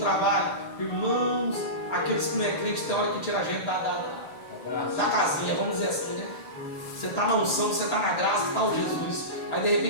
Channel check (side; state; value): right; late; 6.8 ms